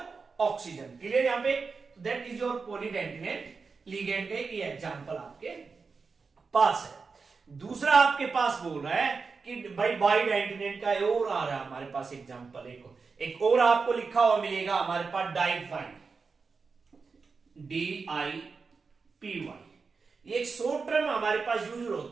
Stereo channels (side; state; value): left; quieter; 4.8 dB